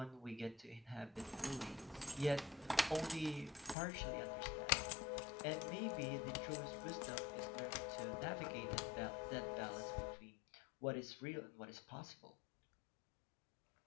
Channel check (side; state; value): right; drops out; at 3.8 s